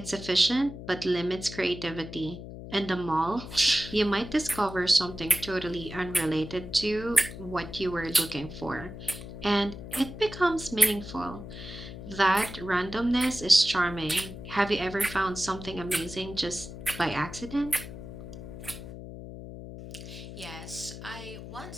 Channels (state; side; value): noise; left; hum, 11 dB below the sound